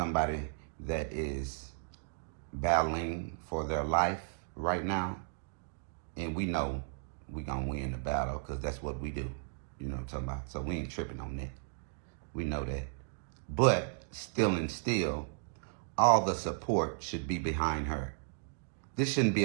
that is battling for their life right now, and we know we're gonna win the battle because that's what we do. You know what I'm talking about? So we ain't tripping on that. We know that. But still, all the support should be behind her. This shouldn't be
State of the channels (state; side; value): silent; left; digital silence